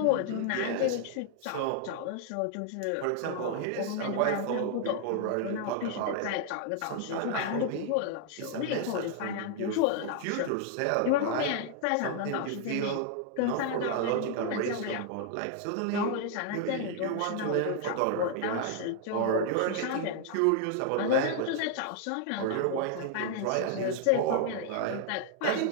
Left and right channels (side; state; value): both; different; correlation 0.00